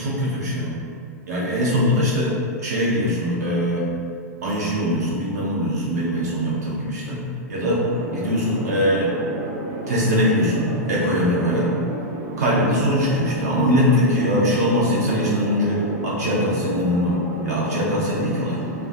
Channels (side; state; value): both; normal; correlation -0.06